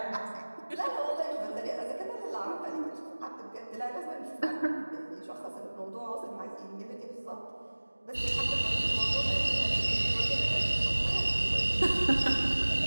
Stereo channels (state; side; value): inverted; both; correlation -1.00